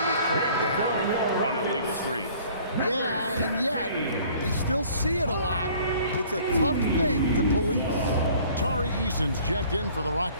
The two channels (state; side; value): inverted; both; correlation -0.53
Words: crack down on illegal screens. Yeah, and yet, we still see it a lot. It's a tough thing to police. Tari Eason's checked in for the